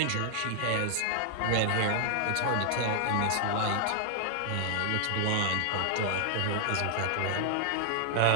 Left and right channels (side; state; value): both; different; correlation 0.00